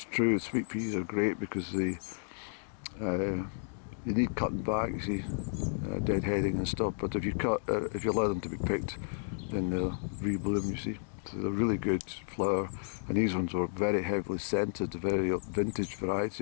true, sweet peas are great because they you need cutting back, you see, deadheading and stuff, but if you allow them to be picked, then they'll rebloom, you see. So they're really good flower, and these ones were very heavily scented, a very vintage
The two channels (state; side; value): silent; right; digital silence